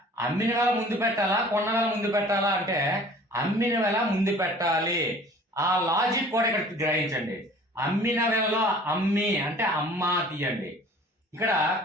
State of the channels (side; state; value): both; normal; correlation 0.48